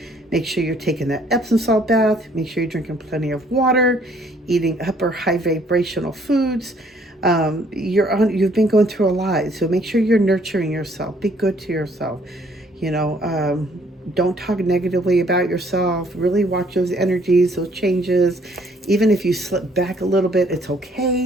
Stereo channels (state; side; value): normal; both; correlation 0.63